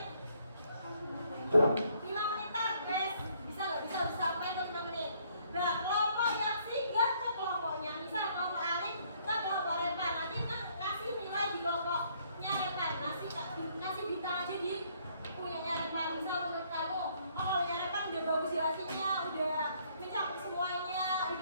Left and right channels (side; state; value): both; inverted; correlation -0.66